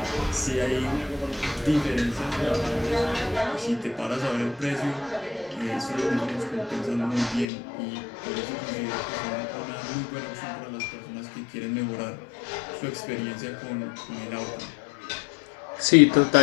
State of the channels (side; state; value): right; drops out; at 7.5 s